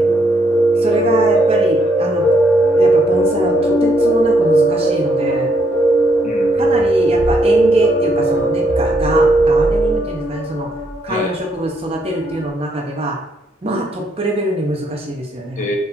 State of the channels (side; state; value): both; normal; correlation 0.74